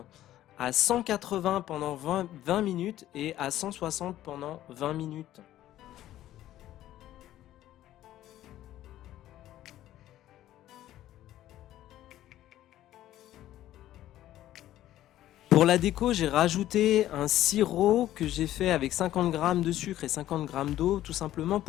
à 180 pendant 20 minutes et à 160 pendant 20 minutes. Pour la déco, j'ai rajouté un sirop que j'ai fait avec 50 g de sucre et 50 g d'eau, tout simplement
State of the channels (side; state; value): right; quieter; 13.4 dB